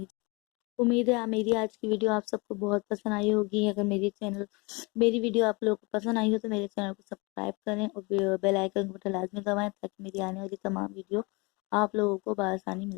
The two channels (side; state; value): right; quieter; 27.8 dB